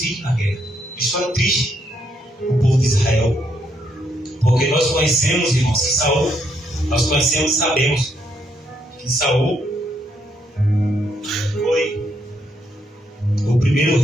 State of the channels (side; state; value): both; normal; correlation 0.75